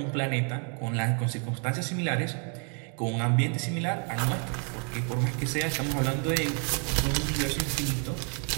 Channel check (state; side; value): quieter; left; 39.9 dB